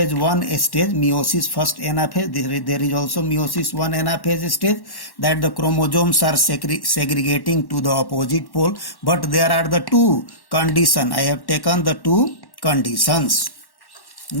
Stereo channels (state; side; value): late; right; 1.1 ms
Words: 1 stage, meiosis first anaphase. There is also meiosis 1 anaphase stage, that the chromosomes are segregating to the opposite pole. But there are the 2 conditions. I have taken the 2 conditions.